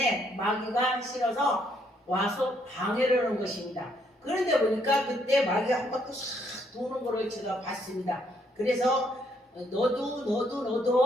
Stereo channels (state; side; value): normal; both; correlation 0.71